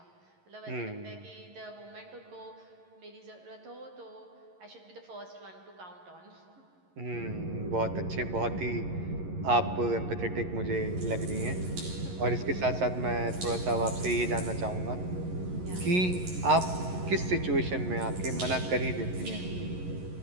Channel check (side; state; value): left; late; 11 ms